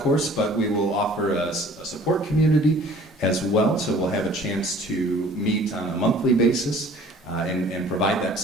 but we will offer a support community as well. So we'll have a chance to meet on a monthly basis and provide that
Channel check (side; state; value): both; normal; correlation 0.51